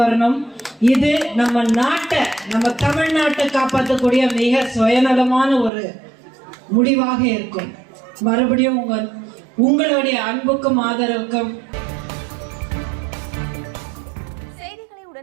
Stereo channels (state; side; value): drops out; left; at 5.7 s